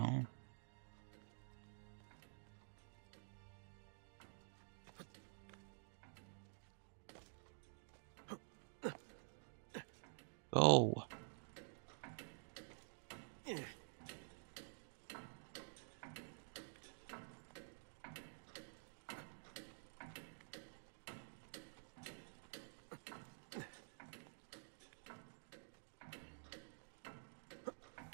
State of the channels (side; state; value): left; silent; digital silence